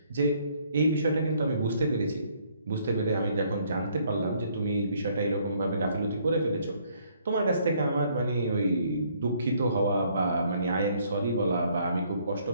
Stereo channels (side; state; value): both; inverted; correlation -0.66